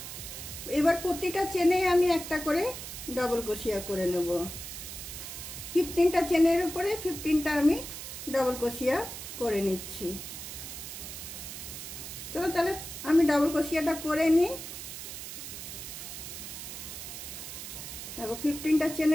এবার প্রতিটা চেনে আমি একটা করে ডাবল ক্রোশিয়া করে নেব। 15টা চেনের উপরে 15টা আমি ডাবল ক্রোশিয়া করে নিচ্ছি। চলো তাহলে আমি ডাবল ক্রোশিয়াটা করে নিই। দেখো 15টা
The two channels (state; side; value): noise; right; hiss, 9 dB below the sound